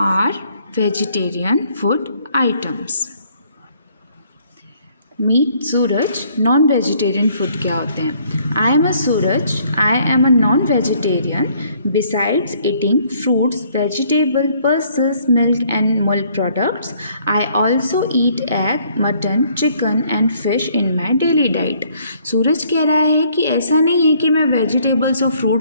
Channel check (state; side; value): inverted; both; correlation -0.64